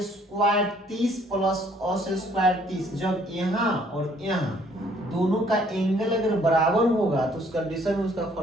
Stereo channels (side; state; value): both; normal; correlation 0.62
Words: square 30 plus cos square 30, जब यहाँ और यहाँ दोनों का एंगल अगर बराबर होगा तो उस कंडीशन में उसका